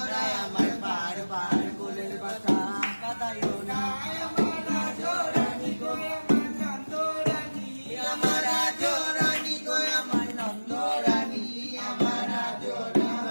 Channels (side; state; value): both; inverted; correlation -1.00